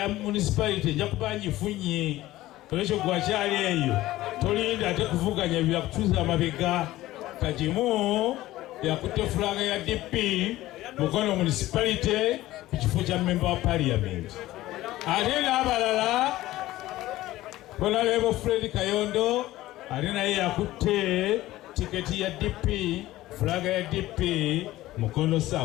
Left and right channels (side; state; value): right; quieter; 16.3 dB